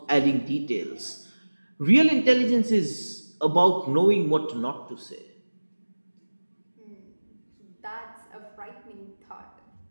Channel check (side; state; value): both; inverted; correlation -1.00